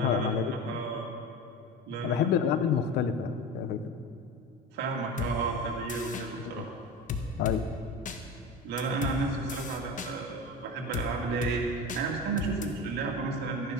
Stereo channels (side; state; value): both; normal; correlation 0.28